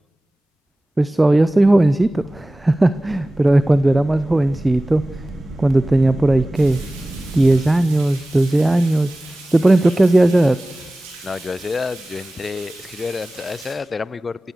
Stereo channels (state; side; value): normal; both; correlation 0.97